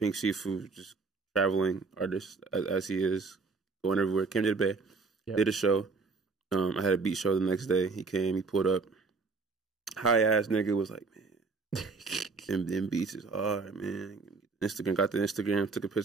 Siifu, just traveling artist as he is, going everywhere. Came to the Bay, did a show. I had a beat show the next day. He came, he pulled up. High ass nigga was like, man, them beats is hard, man. Got the Instagram, took a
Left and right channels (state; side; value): quieter; left; 4.3 dB